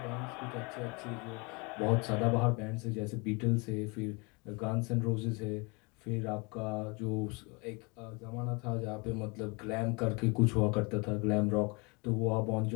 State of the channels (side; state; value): right; quieter; 29.3 dB